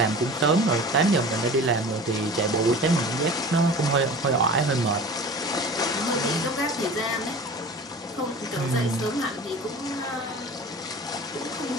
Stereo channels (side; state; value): both; normal; correlation 0.38